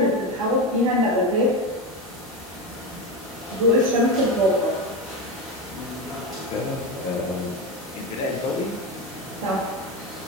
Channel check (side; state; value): both; normal; correlation 0.17